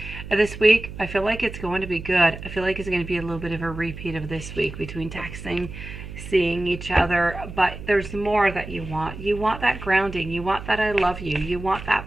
this week, I feel like it's going to be good. I feel like it's going to be a little bit of a repeat of this week between texting, seeing each other. But there's more that you want. You want that grounding. You want that I love you. You want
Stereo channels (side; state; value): right; noise; hum, 11 dB below the sound